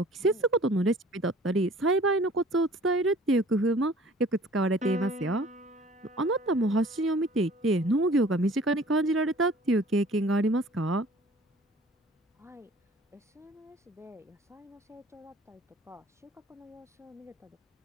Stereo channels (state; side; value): normal; both; correlation 0.50